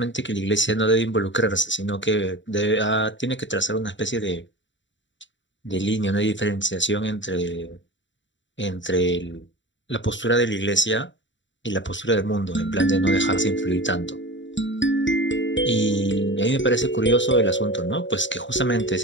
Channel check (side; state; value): right; late; 0.54 ms